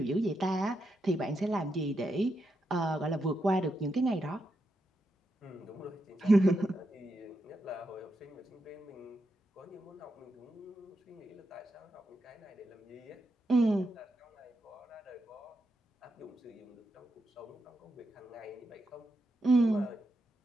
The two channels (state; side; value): normal; both; correlation 0.84